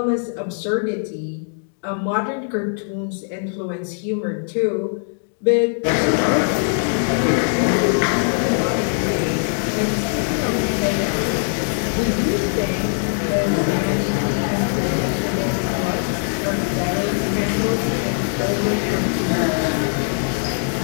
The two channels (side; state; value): right; silent; 58 dB below the other